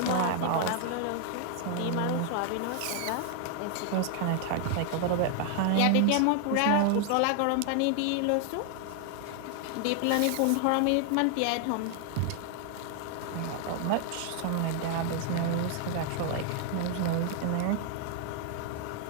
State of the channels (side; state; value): both; different; correlation 0.00